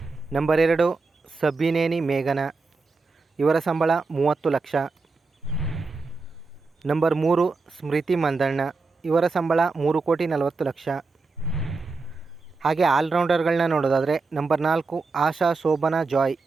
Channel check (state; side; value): quieter; left; 4.0 dB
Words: ನಂಬರ್ 2 ಸಬ್ಬಿನೇನಿ ಮೇಘನಾ, ಇವರ ಸಂಬಳ 30 ಲಕ್ಷ. ನಂಬರ್ 3 ಸ್ಮೃತಿ ಮಂದಣ್ಣ, ಇವರ ಸಂಬಳ 3,40,00,000. ಹಾಗೆ ಆಲ್ರೌಂಡರ್ಗಳನ್ನ ನೋಡೋದಾದರೆ ನಂಬರ್ 4 ಆಶಾ ಶೋಭನಾ ಜಾಯ್,